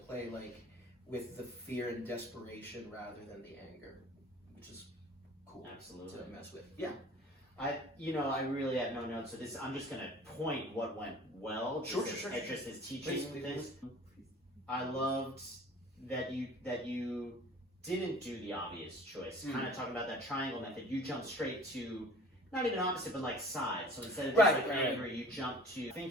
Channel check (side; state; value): both; normal; correlation 0.47